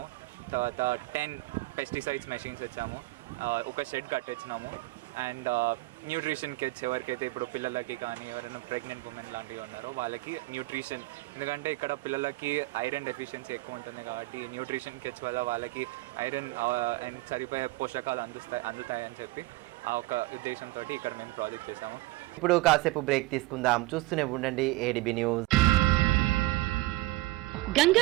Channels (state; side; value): quieter; left; 20.5 dB